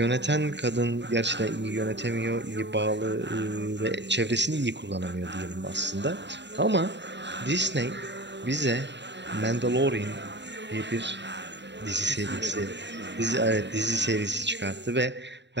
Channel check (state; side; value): late; left; 0.52 ms